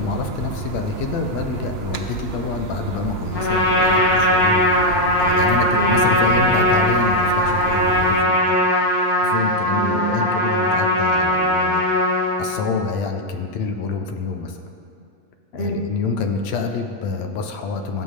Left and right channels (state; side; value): late; right; 8.7 ms